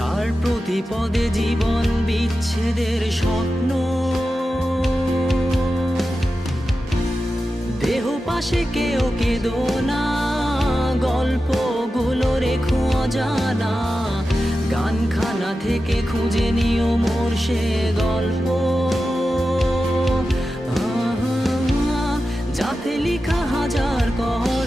প্রতি পদে জীবন বিচ্ছেদের স্বপ্ন। দেহ পাশে কেউ কেঁদো না, গল্পগুলো রেখো অজানা, গানখানা থেকে খুঁজে নিও মোর সে গল্প, যাতে লিখা হাজার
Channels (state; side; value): normal; both; correlation 0.92